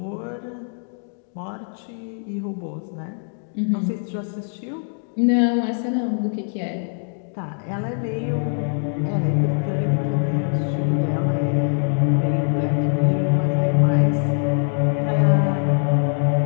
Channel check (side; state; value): right; silent; 57 dB below the other